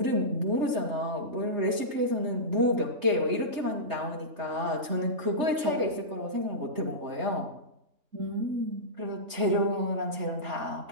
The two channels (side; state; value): left; late; 3.3 ms